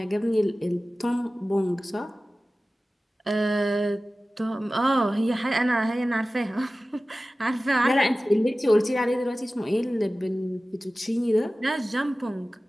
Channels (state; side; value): normal; both; correlation 0.96